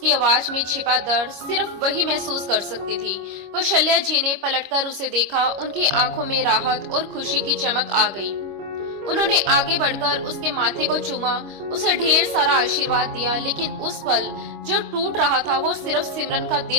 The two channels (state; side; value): late; left; 25 ms